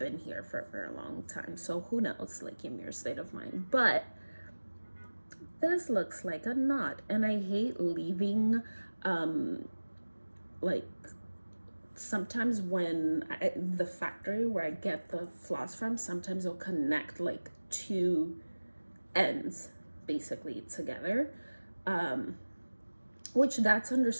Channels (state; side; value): inverted; both; correlation -1.00